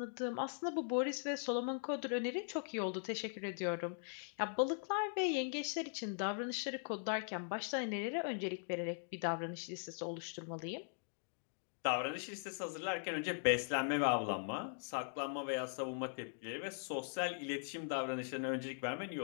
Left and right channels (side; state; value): right; silent; digital silence